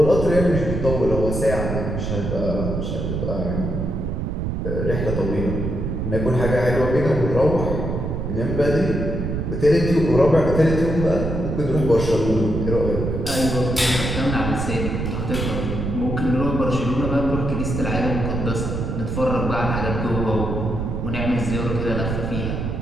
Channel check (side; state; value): right; noise; rumble, 2 dB below the sound